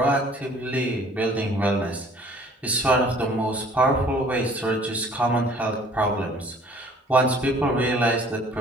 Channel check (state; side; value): normal; both; correlation 0.53